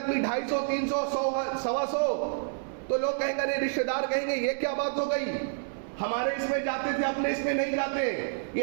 250 300 100 تو لوگ کہیں گے، رشتہ دار کہیں گے یہ کیا بات ہو گئی، ہمارے اس میں جاتے تھے اپنے اس میں نہیں جاتے.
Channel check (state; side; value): silent; left; 59 dB below the other